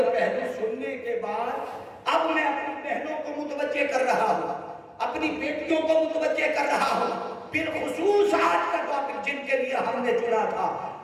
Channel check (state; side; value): identical; both; correlation 1.00